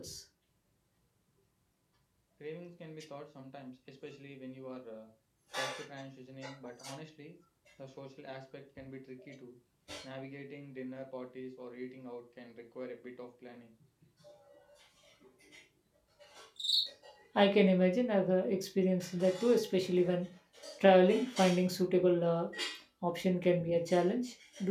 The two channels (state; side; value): identical; both; correlation 1.00